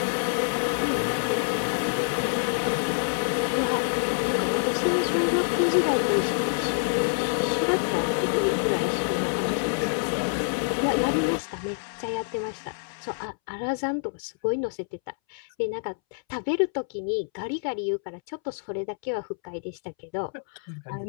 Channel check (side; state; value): right; silent; 60 dB below the other